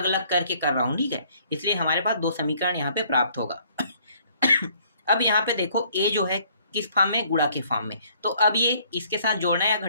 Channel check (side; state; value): both; inverted; correlation -0.62